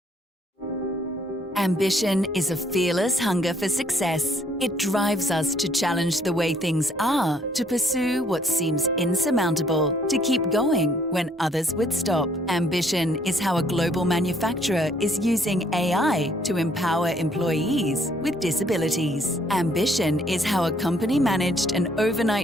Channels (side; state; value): both; normal; correlation 0.65